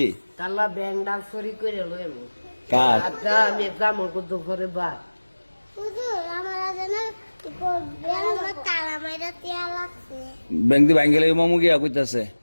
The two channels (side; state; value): both; inverted; correlation -1.00